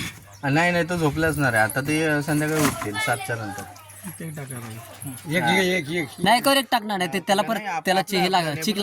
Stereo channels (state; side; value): identical; both; correlation 1.00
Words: नाही तो झोपला असणार आहे आता. ते संध्याकाळी उठतील 7च्या नंतर. एक नाही कर एक टाकणार नाही ते, त्याला परत त्याला हे लागेल, चिक